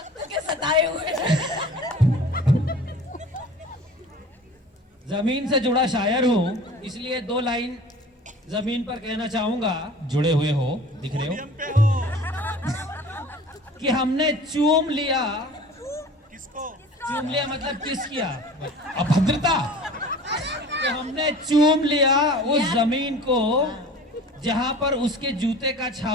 के सताए हुए। जमीन से जुड़ा शायर हूँ, इसलिए 2 लाइन जमीन पर कहना चाहूंगा जुड़े हुए हो, दिख रहे हो। कि हमने चूम लिया। चूम लिया मतलब किस किया? अभद्रता। कि हमने चूम लिया उस जमीन को जहां पर उसके जूते का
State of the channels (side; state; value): both; normal; correlation 0.42